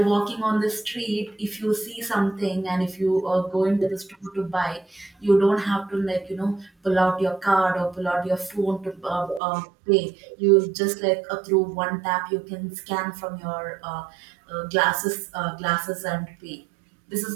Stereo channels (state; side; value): drops out; left; at 9.4 s